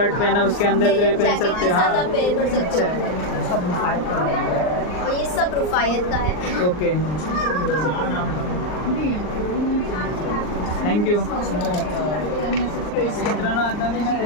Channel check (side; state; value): right; late; 39 ms